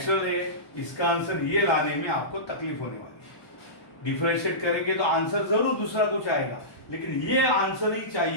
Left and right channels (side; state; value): right; late; 1.2 ms